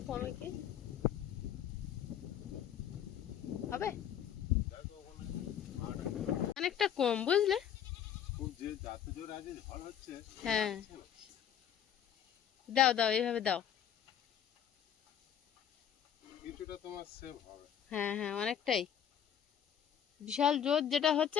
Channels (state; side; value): quieter; right; 9.3 dB